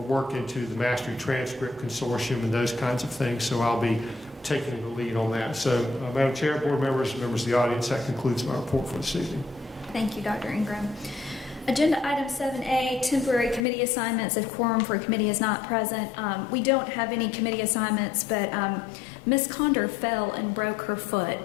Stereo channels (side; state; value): right; drops out; at 13.7 s